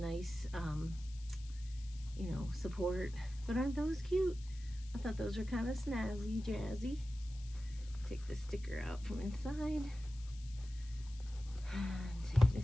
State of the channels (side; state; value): left; noise; hiss, 21 dB below the sound